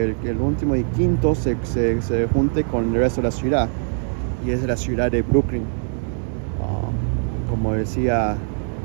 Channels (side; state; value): left; silent; 64 dB below the other